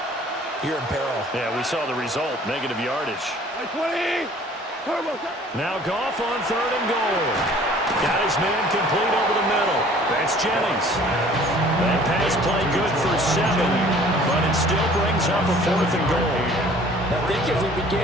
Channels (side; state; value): both; normal; correlation 0.52